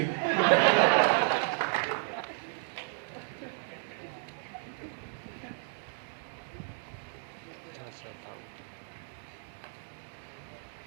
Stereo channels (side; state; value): left; silent; 56 dB below the other